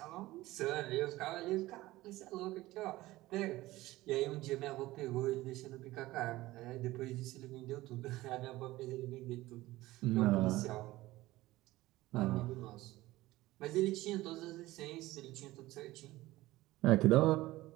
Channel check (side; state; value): left; quieter; 17.8 dB